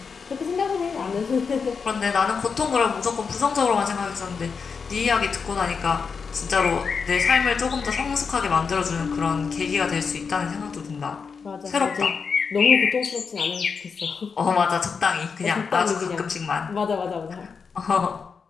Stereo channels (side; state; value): right; quieter; 5.6 dB